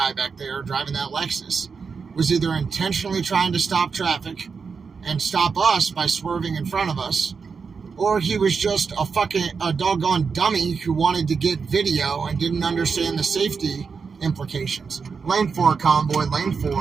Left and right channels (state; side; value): quieter; left; 5.4 dB